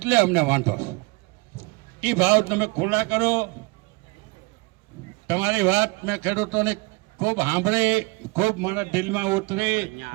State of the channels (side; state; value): left; quieter; 26.7 dB